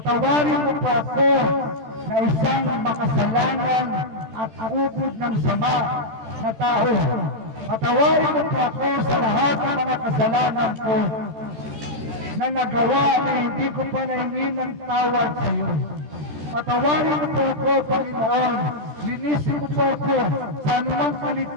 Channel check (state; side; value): late; left; 13 ms